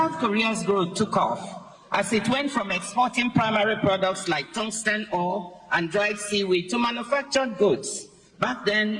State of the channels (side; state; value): both; identical; correlation 1.00